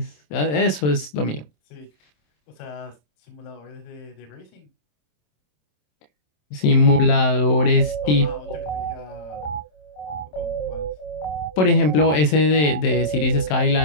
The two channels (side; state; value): right; late; 27 ms